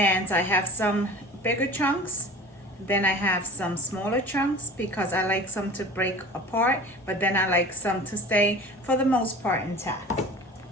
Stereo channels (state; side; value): normal; both; correlation 0.40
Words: I have some bigger chunks. Then I have some smaller chunks because I like some to break apart. But then I like some to stay, for the most part, intact.